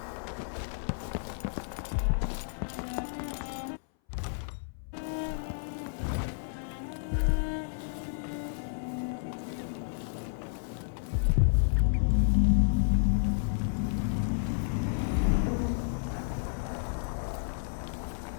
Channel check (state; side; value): silent; right; 57 dB below the other